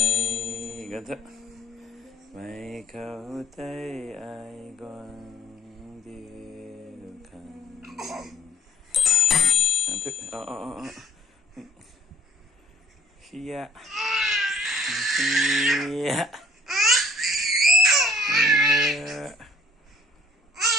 gần thật mày khâu tay ai quan điêu khăn thức Hia Hia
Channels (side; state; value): both; normal; correlation 0.57